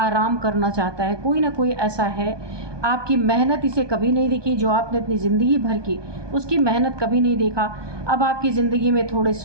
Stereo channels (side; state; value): left; late; 1.2 ms